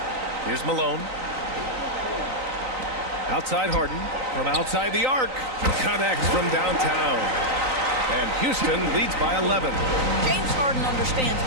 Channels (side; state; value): left; late; 3.9 ms